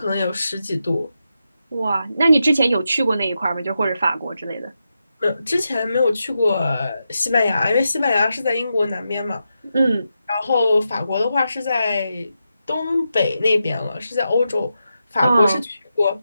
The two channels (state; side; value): inverted; both; correlation -0.87